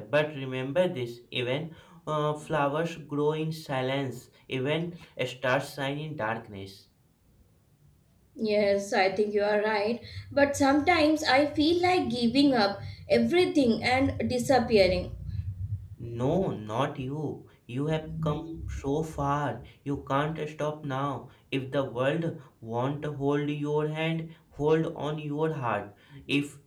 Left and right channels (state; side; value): identical; both; correlation 1.00